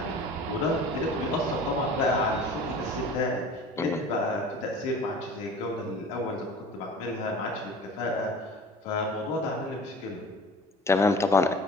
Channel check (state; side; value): normal; both; correlation 0.42